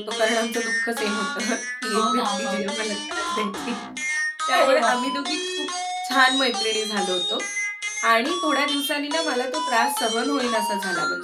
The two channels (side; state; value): both; identical; correlation 1.00